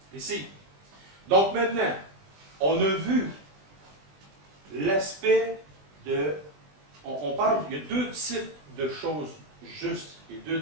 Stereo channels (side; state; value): left; late; 20 ms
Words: Ici. Donc maintenant, on a vu l'aspect de... On parle, il y a deux types de choses justes et deux